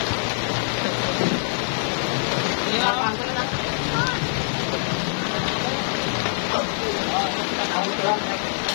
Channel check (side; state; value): right; silent; 63 dB below the other